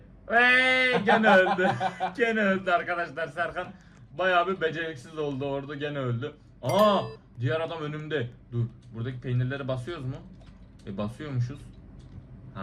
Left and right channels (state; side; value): identical; both; correlation 1.00